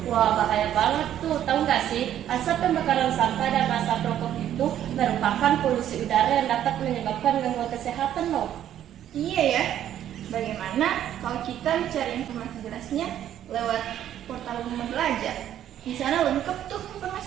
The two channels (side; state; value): left; quieter; 11.1 dB